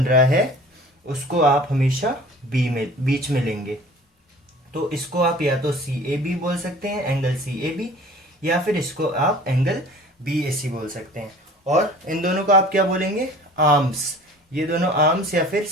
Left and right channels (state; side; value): normal; both; correlation 0.46